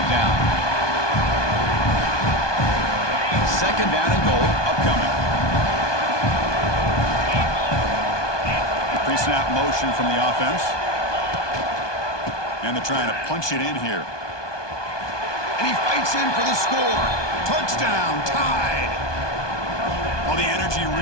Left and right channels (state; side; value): late; right; 1.2 ms